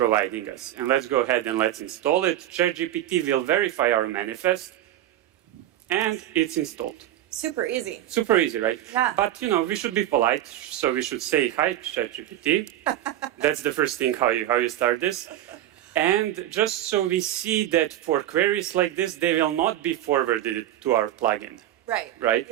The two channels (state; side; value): quieter; left; 12.9 dB